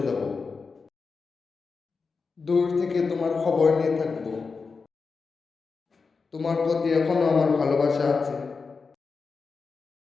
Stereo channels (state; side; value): quieter; right; 4.7 dB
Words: যাব, দূর থেকে তোমার খবর নিয়ে থাকবো। তোমার প্রতি এখনো আমার ভালোবাসা আছে,